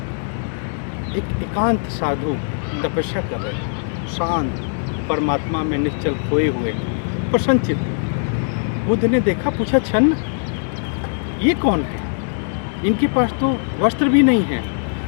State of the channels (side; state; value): right; silent; 63 dB below the other